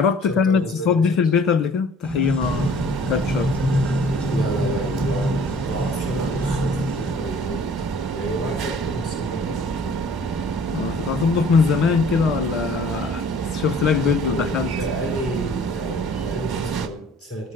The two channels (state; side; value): normal; both; correlation 0.52